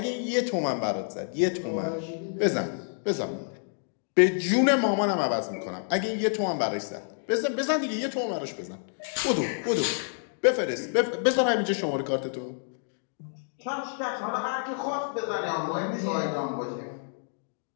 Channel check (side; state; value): right; silent; digital silence